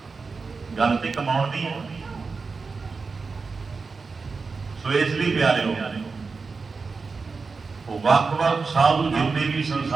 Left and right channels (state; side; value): quieter; left; 4.5 dB